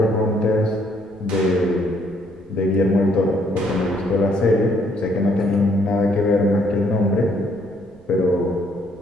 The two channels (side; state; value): right; noise; rumble, 27 dB below the sound